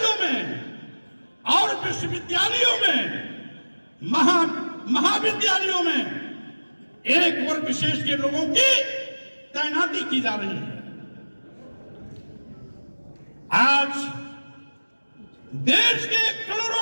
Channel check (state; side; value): inverted; both; correlation -1.00